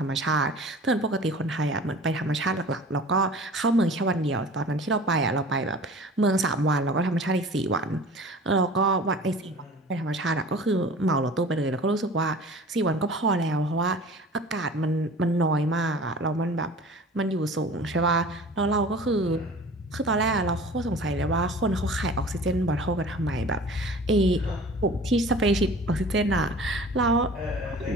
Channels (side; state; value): both; normal; correlation 0.43